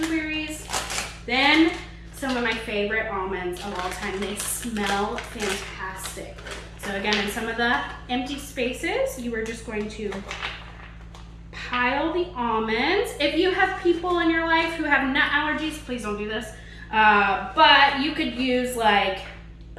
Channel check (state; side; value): identical; both; correlation 1.00